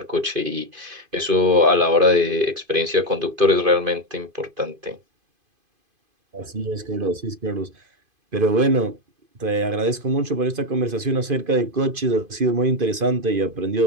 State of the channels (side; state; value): left; late; 2.5 ms